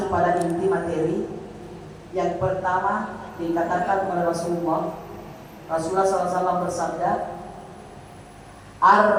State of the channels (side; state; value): both; identical; correlation 1.00